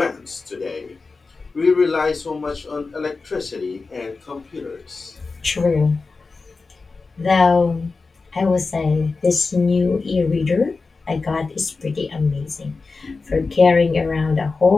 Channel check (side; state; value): right; quieter; 4.1 dB